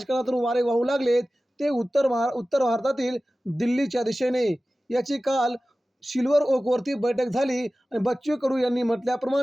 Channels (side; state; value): both; normal; correlation 0.96